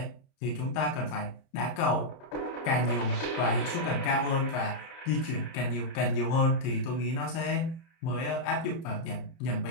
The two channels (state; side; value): late; right; 31 ms